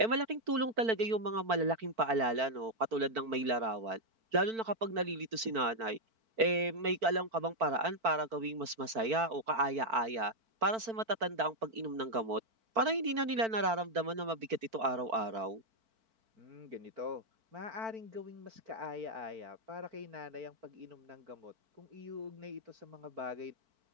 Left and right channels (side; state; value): left; late; 4.5 ms